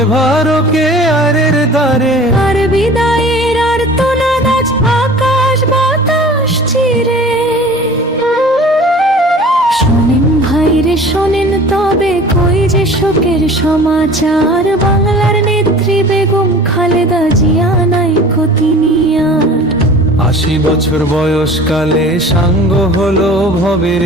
আরের দ্বারে? আর বিদায়ের আর্তনাদ আজ আকাশ বাতাস চিরে। শোনেন ভাইরে শোনেন তবে কই যে শোকের সমাচার, বাংলার নেত্রী বেগম খালেদা জিয়া নাই ক্ষতি নিয়ার। ৮০ বছর বয়সকালে সাঙ্গ হলো ভবের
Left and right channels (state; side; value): normal; both; correlation 0.43